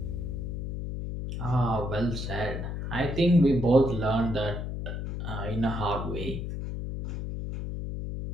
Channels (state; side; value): noise; left; hum, 4 dB below the sound